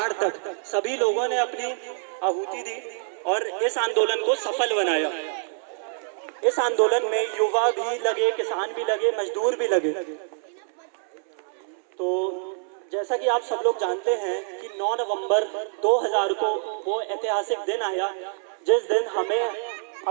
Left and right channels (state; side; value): silent; left; 61 dB below the other